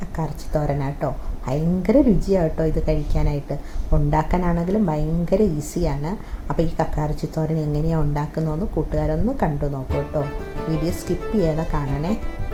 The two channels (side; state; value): both; identical; correlation 1.00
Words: കക്കാറച്ചി തോരനാട്ടോ. ഭയങ്കര രുചിയാട്ടോ ഇത് കഴിക്കാനായിട്ട്. ഉണ്ടാക്കാനാണെങ്കിലും ഭയങ്കര ഈസിയാണ്. അപ്പോൾ ഈ കക്കാറച്ചി തോരൻ എങ്ങനെയാണ് ഉണ്ടാക്കുന്നതെന്ന് കൂട്ടുകാരൊന്ന് കണ്ടു നോക്കൂ കേട്ടോ. വീഡിയോ സ്കിപ്പ് ചെയ്യാതെ കാണണേ.